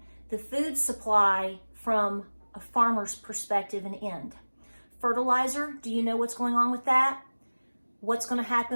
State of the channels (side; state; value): both; inverted; correlation -1.00